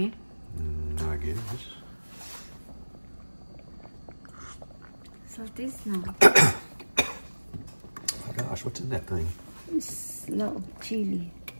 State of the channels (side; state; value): both; inverted; correlation -1.00